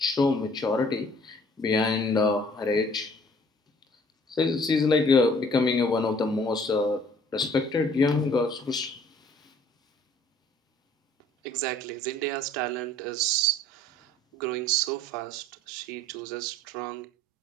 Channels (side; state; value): both; normal; correlation 0.56